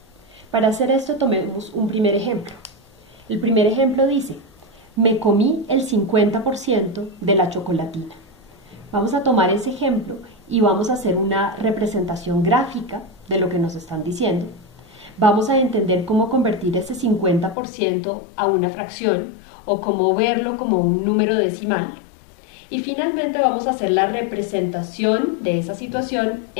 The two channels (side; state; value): right; drops out; at 17.6 s